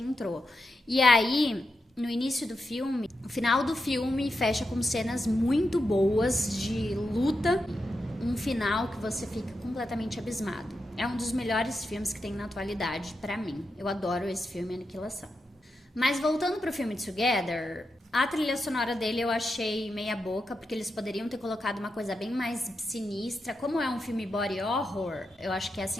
E aí, no início do filme, o final do filme fecha com cenas muito boas de luta, um final que você fica completamente abismado. É um dos melhores filmes que tem na atualidade pra mim. Eu adoro esse filme, Aniquilação. Mas voltando pro filme Together, a trilha sonora dele eu achei meia boca, porque eles poderiam ter colocado uma coisa bem mais sinistra. Como é um filme body horror, eu acho que é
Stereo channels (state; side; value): normal; both; correlation 0.87